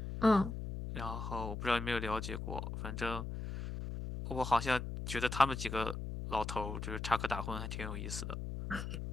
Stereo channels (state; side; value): noise; left; hum, 5 dB below the sound